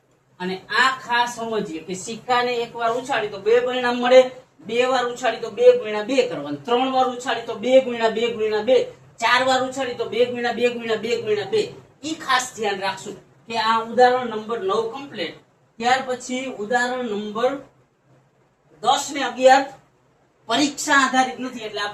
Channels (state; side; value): identical; both; correlation 1.00